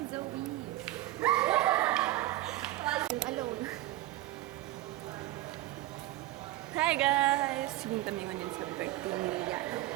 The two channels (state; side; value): quieter; left; 16.6 dB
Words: Alone. Hi guys! Sige kami ngayon sa birthday ni Rihanna.